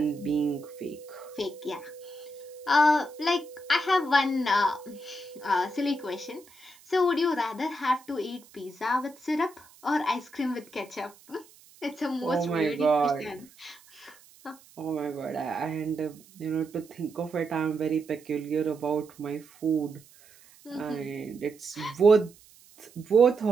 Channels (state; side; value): noise; right; hiss, 25 dB below the sound